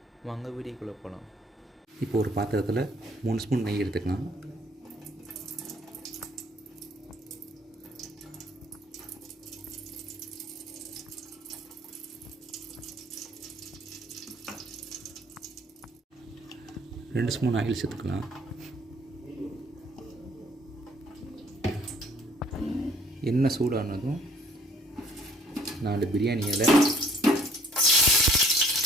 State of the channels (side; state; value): both; normal; correlation 0.59